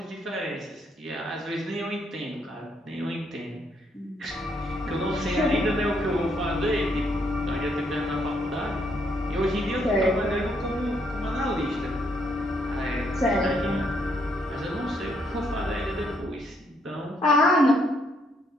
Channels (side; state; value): both; normal; correlation 0.73